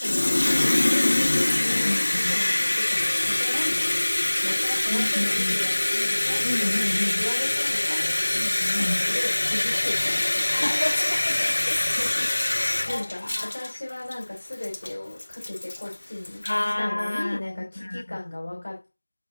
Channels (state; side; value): inverted; both; correlation -1.00